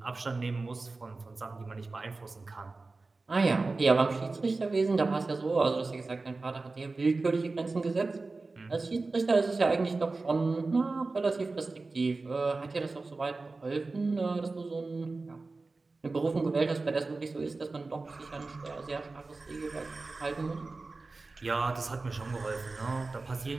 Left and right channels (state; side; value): quieter; left; 3.6 dB